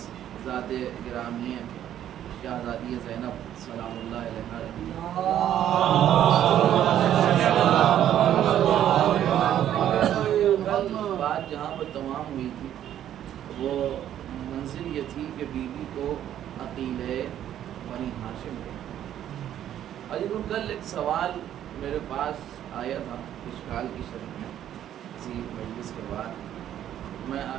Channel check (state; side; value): quieter; left; 11.0 dB